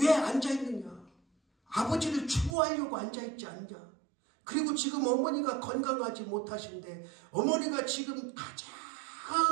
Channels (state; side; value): drops out; left; at 2.6 s